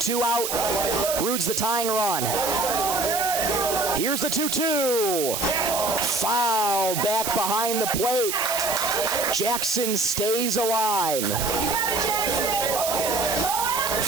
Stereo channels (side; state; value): right; noise; hiss, 3 dB below the sound